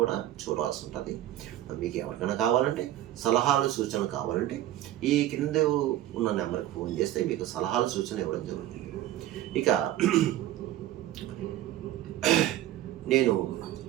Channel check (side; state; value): left; quieter; 13.5 dB